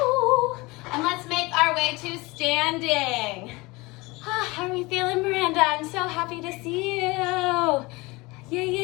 And let's make our way to standing. How are we feeling, Miranda? I'm so happy to see you. Yay,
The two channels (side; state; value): right; quieter; 23.5 dB